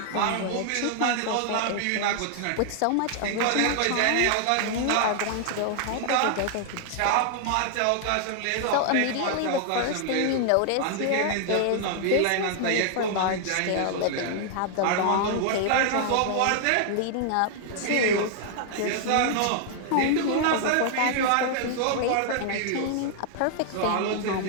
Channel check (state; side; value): different; both; correlation 0.00